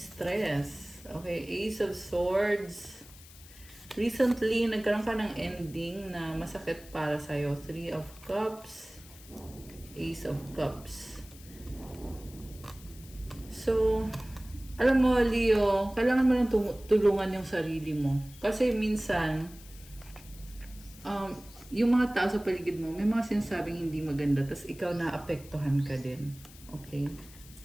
Okay, Ace of Swords. Recently, nagkaroon ka ng ending na masakit para sa'yo. Three of Cups, Ace of Cups. So, alam mo, Leo, kailangan mo lang tulungan yung sarili mo. Kasi minsan, yung mga tao sa paligid mo, may mga sinasabing hindi maganda, tas ikaw naapektuhan ka din. Okay?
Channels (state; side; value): noise; left; hiss, 20 dB below the sound